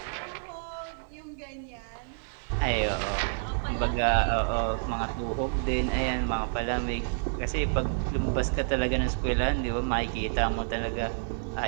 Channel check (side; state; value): left; silent; digital silence